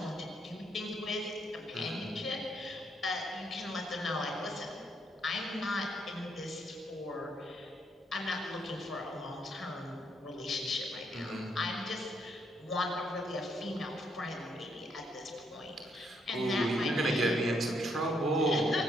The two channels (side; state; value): both; normal; correlation 0.74